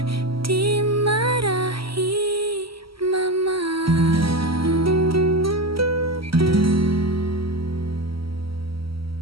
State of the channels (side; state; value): left; late; 0.75 ms